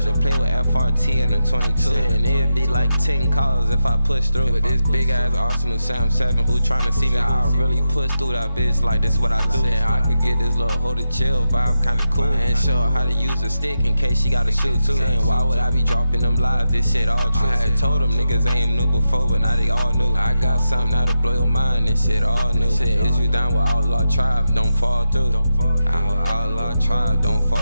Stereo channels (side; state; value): both; inverted; correlation -0.88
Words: to play with FRT and a 22. And it'd be like 10 calls if I push through. With this big ass Arsenal Sam 7 who tryna see me how I really push through that bitch, like this what I do. Said I could get this little hold it chill vibe kinda cool. And show her how to use a stick in case she gotta shoot too. Saying why would I be dropping them lies, this shit all true. I had told them niggas ain't knew before, but now they all knew. I got something that'll blow your mind, this shit all new. Shit, is you down with Outlaw Tribe, don't fall through. Outlaw Tribe, don't